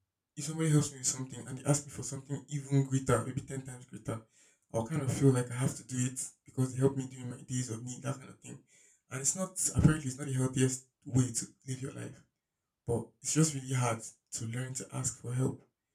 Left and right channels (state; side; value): identical; both; correlation 1.00